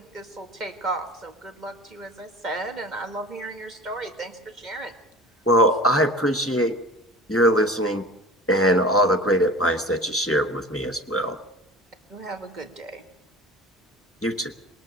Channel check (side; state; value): both; normal; correlation 0.38